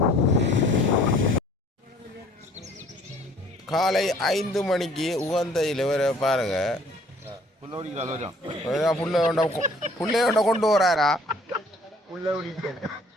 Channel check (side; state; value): both; normal; correlation 0.56